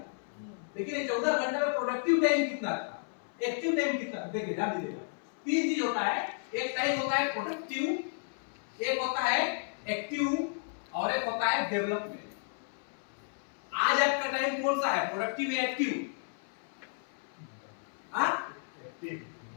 लेकिन ये 14 घंटे में प्रोडक्टिव टाइम कितना था, एक्टिव टाइम कितना? देखिए ध्यान दीजिएगा, 3 चीज होता है। एक टाइम होता है प्रोडक्टिव, एक होता है एक्टिव और एक होता है डेवलपमेंट। आज आपका टाइम कौन सा है, प्रोडक्टिव या एक्टिव?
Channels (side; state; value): right; silent; 56 dB below the other